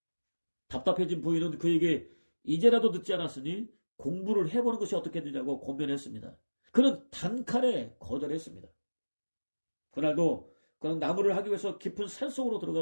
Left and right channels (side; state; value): both; inverted; correlation -1.00